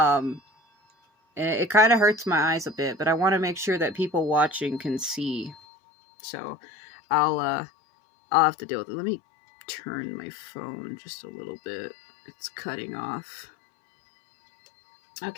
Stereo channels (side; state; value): right; drops out; at 5.6 s